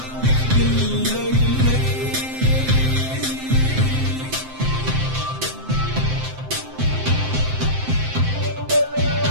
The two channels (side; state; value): left; late; 7.7 ms